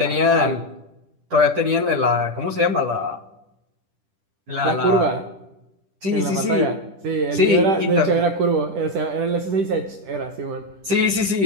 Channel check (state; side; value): late; left; 10 ms